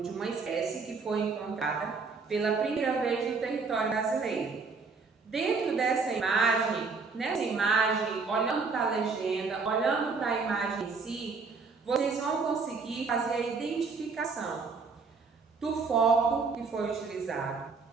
uma espécie que foi encontrada pela primeira vez no território brasileiro. Dentro dessa imagem, nessa imagem, olhando para a legenda, olhando para a imagem em si, vocês vão conseguir fazer a identificação do foco que foi utilizado,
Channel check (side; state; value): left; quieter; 4.7 dB